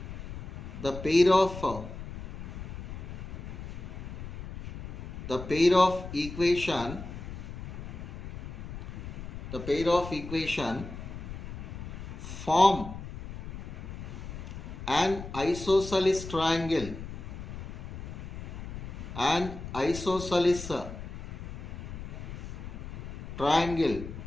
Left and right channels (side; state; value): left; noise; rumble, 9 dB below the sound